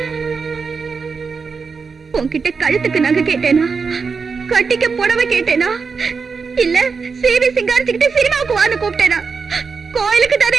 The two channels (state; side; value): quieter; left; 5.2 dB